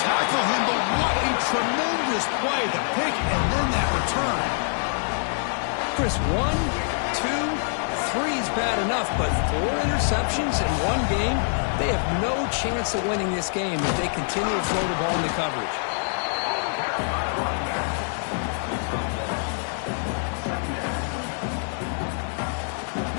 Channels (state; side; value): silent; right; 60 dB below the other